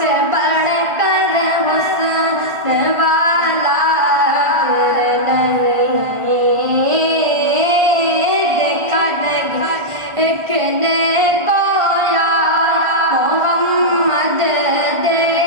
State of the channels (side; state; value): left; late; 1.4 ms